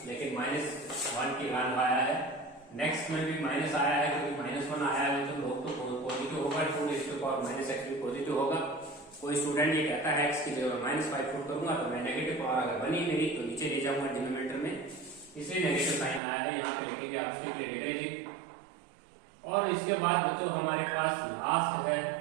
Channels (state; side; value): drops out; left; at 16.2 s